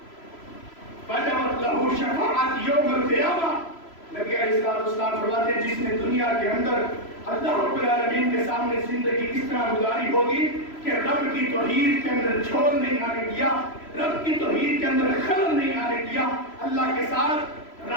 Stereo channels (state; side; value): late; right; 3.0 ms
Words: وجبت له شفاعت یوم القیامہ۔ نبی علیہ السلام فرماتے ہیں جس نے دنیا کے اندر اللہ رب العالمین کے سامنے زندگی اس طرح گزاری ہوگی کہ رب کی توحید کے اندر جھول نہیں آنے دیا، رب کی توحید کے اندر خلل نہیں آنے دیا، اللہ کے ساتھ